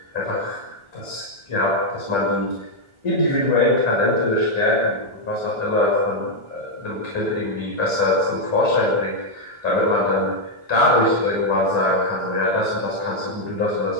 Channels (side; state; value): left; late; 1.4 ms